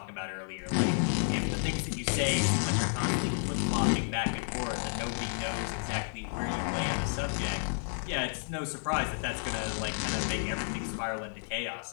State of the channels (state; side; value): silent; right; digital silence